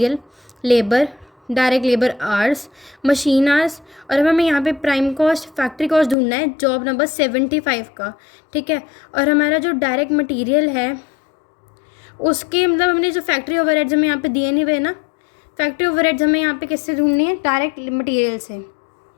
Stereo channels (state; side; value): drops out; right; at 6.2 s